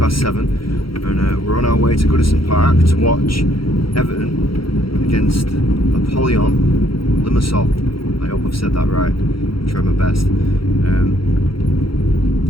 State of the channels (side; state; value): right; late; 0.74 ms